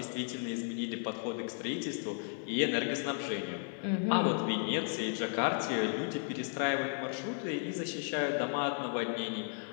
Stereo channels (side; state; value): right; silent; 55 dB below the other